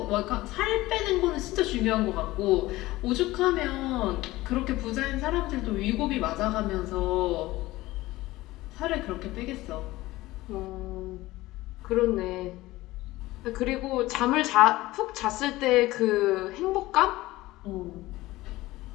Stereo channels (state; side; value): quieter; right; 18.2 dB